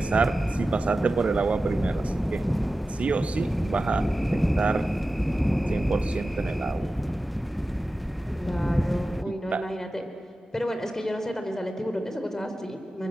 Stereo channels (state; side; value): normal; both; correlation 0.94